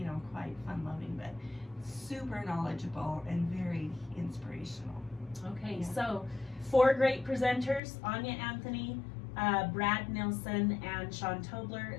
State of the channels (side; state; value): right; drops out; at 7.8 s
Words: quite fun-loving, but super knowledgeable and very inspirational. Okay, Yeah. so 4 great presenters: Anya Anthony, Brad Nilsson, and Sean Tobler,